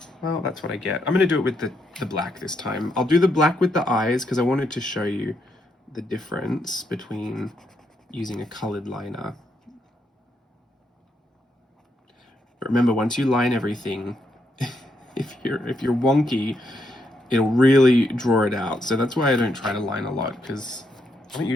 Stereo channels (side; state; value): both; normal; correlation 0.78